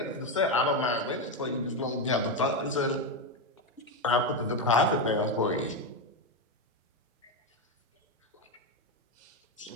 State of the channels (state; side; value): normal; both; correlation 0.09